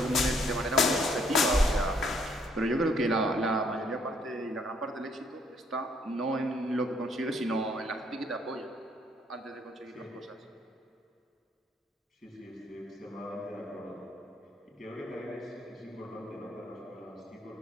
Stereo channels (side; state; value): both; normal; correlation 0.66